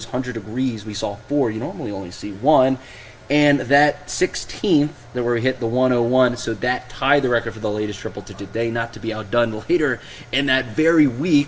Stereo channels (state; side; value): identical; both; correlation 1.00